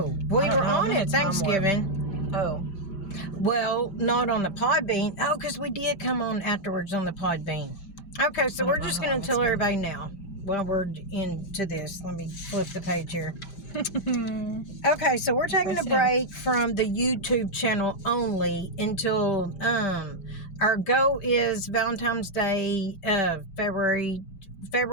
We were on at Thanksgiving. Oh. Well, not on the Podbean. Oh, because we did come on afterwards on the Podbean. Okay, so we're just going to tell everybody now while we're into this. Let me flip the page here. Okay, so we're taking a break from the YouTube channel only until our goal is Valentine's Day, February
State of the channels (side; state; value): right; late; 5.1 ms